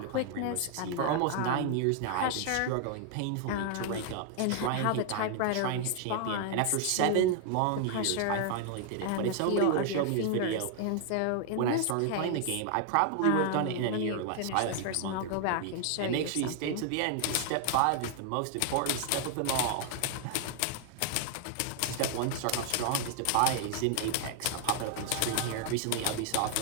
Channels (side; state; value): both; different; correlation 0.00